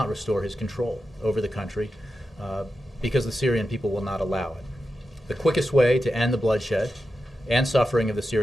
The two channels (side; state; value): both; normal; correlation 0.90